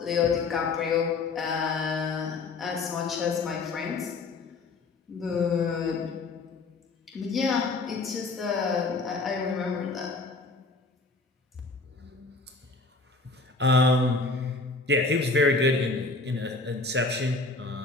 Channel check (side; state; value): right; quieter; 3.6 dB